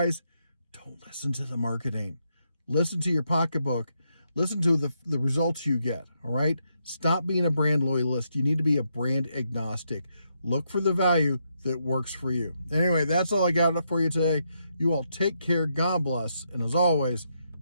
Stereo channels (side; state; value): both; inverted; correlation -0.80